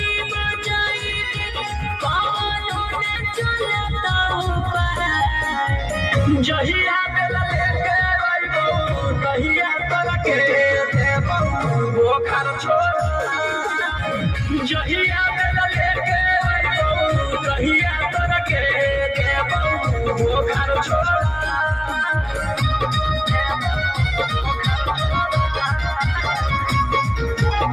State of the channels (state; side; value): identical; both; correlation 1.00